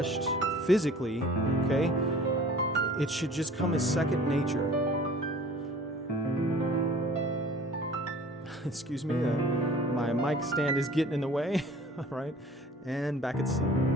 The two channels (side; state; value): both; normal; correlation 0.47